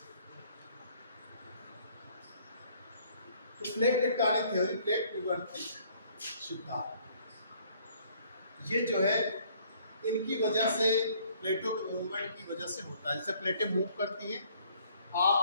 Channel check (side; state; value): both; inverted; correlation -0.61